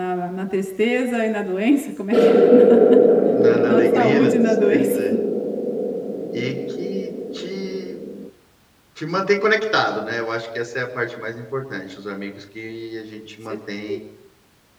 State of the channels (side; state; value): both; identical; correlation 1.00